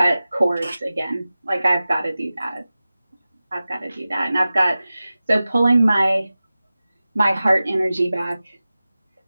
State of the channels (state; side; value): inverted; both; correlation -0.96